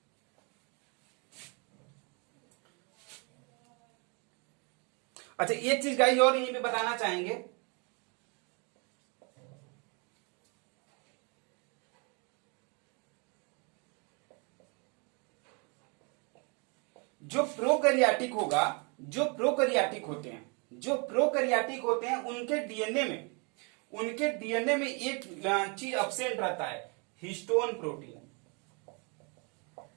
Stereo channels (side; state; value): left; quieter; 33.3 dB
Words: अच्छा एक चीज गाइस और यहीं पे बताना चाहेंगे, जो प्रोकैरियोटिक होगा, जो प्रोकैरियोटिक होते हैं उनके डीएनए में एक चीज एब्सेंट रहता है, हिस्टोन प्रोटीन।